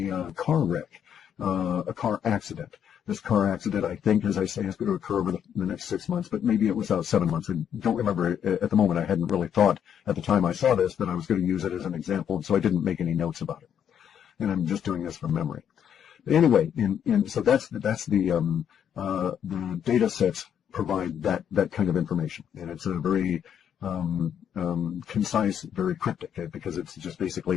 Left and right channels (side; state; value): right; quieter; 8.8 dB